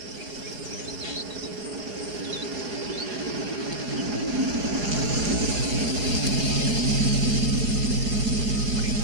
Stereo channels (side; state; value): left; late; 4.8 ms